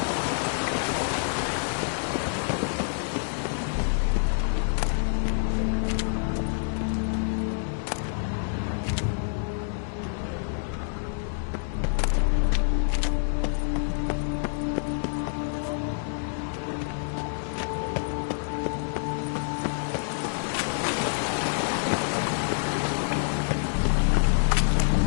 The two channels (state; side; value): silent; right; digital silence